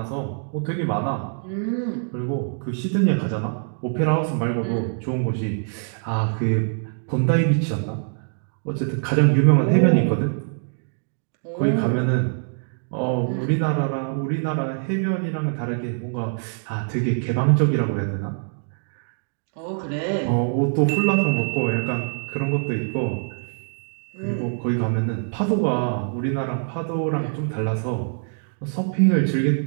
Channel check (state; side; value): silent; left; digital silence